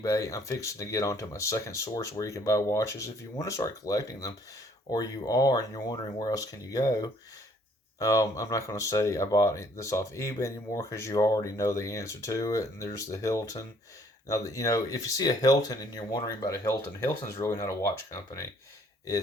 I'm fixing to get onto my second source where you can buy watches. If you want to start collecting them, or you are and you're wondering where else can you go, I'm not going to say I bought this off eBay anymore because you already know the answer to it. And there's the Hilton. Now, if you see a Hilton and you're wondering about a Hilton, Hilton's really not a watch company.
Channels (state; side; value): normal; both; correlation 0.62